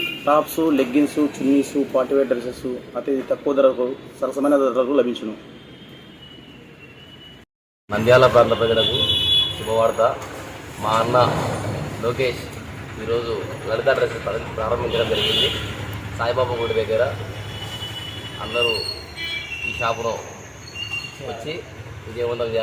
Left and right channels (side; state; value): both; identical; correlation 1.00